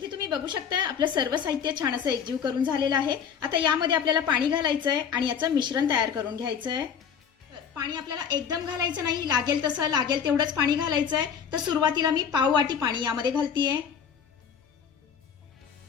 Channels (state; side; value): quieter; right; 7.4 dB